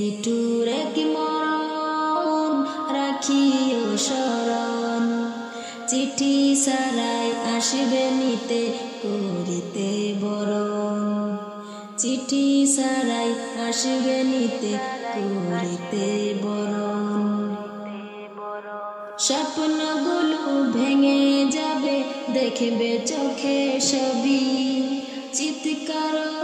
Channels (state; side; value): identical; both; correlation 1.00